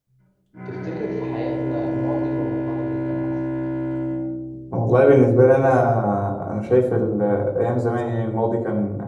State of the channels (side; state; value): both; identical; correlation 1.00